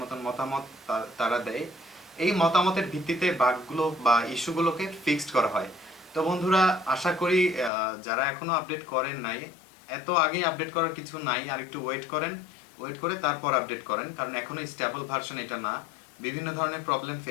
মতন মতামত তারা দেয়। এই মতামতের ভিত্তিতে বাগগুলো বা ইস্যুগুলোকে ফিক্সড করা হয়। তো বন্ধুরা, আশা করি যারা এখনো আপডেট করেন নাই, এত আগেই আপডেট করার কিছু নাই, আর একটু ওয়েট করে তারপর আপডেট করেন, কারণ এখনো স্টেবল ভার্সন এটা না, বিভিন্ন ধরনের প্রবলেম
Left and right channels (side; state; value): right; drops out; at 7.7 s